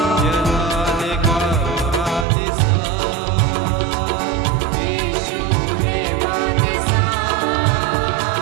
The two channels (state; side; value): drops out; left; at 2.2 s